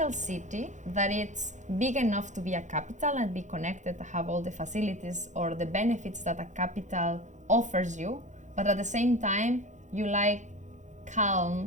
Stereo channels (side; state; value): left; late; 0.35 ms